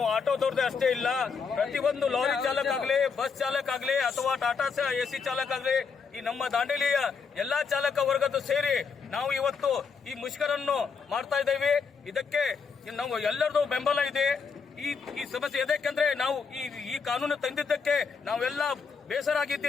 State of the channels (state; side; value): quieter; right; 5.5 dB